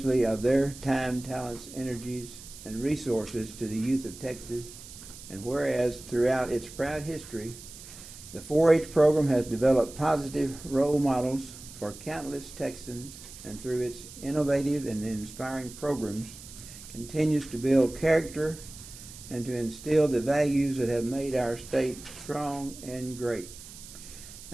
of their time, talents, energies, and resources to the youth of Texas. And whereas throughout its proud history, the 4-H program has developed positive role models for countless Texans, and through its innovative and inspiring programs, continues to build character and to instill the values that have made our state strong and great.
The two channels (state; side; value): noise; right; hiss, 16 dB below the sound